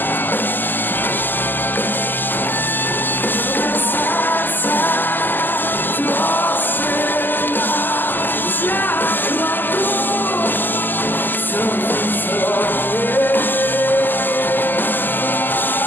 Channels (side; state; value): right; late; 0.090 ms